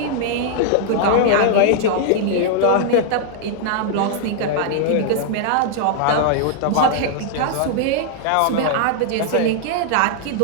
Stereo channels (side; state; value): both; different; correlation -0.01